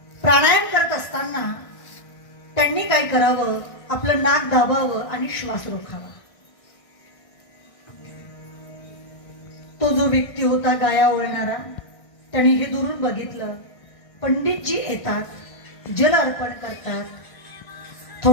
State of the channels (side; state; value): right; late; 1.5 ms